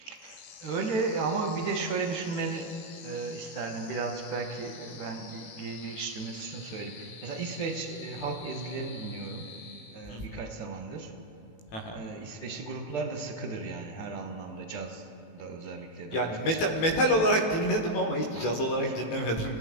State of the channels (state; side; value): late; right; 18 ms